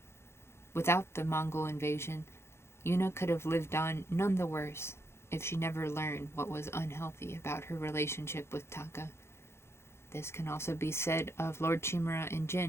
Without the Mongol invasion, Yuna could have lived on none the worse, if she never learned what was unhealthy about her relationship with Taka. This can also be said of Lord Chimera and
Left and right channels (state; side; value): late; right; 0.12 ms